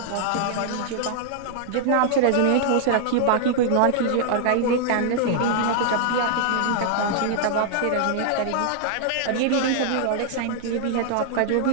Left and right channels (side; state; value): both; different; correlation -0.01